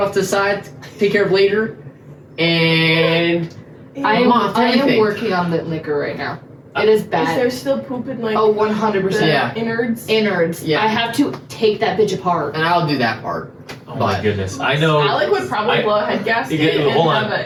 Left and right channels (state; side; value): identical; both; correlation 1.00